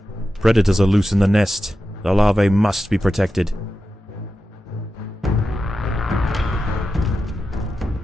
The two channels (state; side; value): normal; both; correlation 0.91